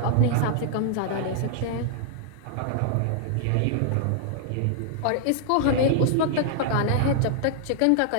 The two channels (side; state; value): both; different; correlation 0.00